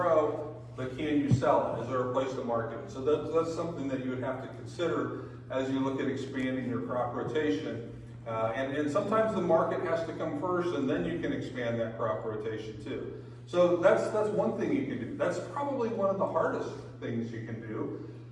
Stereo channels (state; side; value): identical; both; correlation 1.00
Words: but can you sell it? Is there a place to market it? So that's something that you would have to consider as you look at expanding your crop rotation. And sometimes the market has to come first, and then you can expand that crop rotation too. So that's one thing you can do. That's probably one of the hardest things you can do,